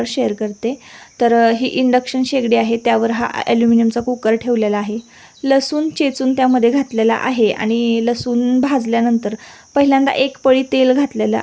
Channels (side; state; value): both; identical; correlation 1.00